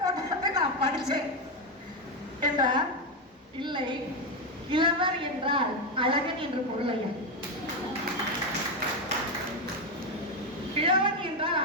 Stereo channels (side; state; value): both; normal; correlation 0.08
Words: போட்டதை நான் படிச்சேன் என்றார். இல்லை, கிழவர் என்றால் அழகன் என்று பொருள் ஐயா. கிழவன் என்றால்